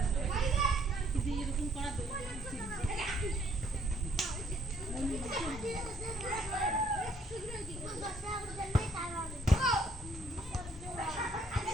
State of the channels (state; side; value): normal; both; correlation 0.65